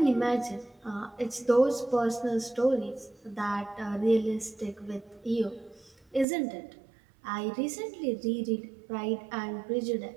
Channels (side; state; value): left; drops out; at 6.2 s